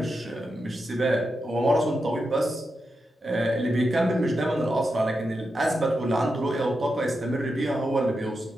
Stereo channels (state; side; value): normal; both; correlation 0.88